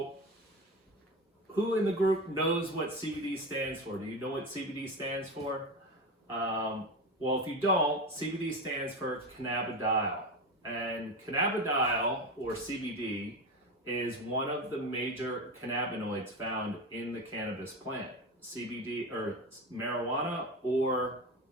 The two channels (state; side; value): normal; both; correlation 0.22